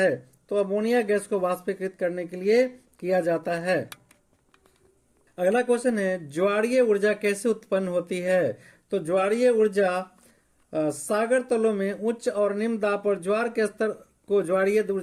तो अमोनिया गैस को वाष्पीकृत करने के लिए किया जाता है। अगला क्वेश्चन है, ज्वारीय ऊर्जा कैसे उत्पन्न होती है? तो ज्वारीय ऊर्जा सागर तलों में उच्च और निम्न दाब पर ज्वार के स्तर को ज्वारीय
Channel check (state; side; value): identical; both; correlation 1.00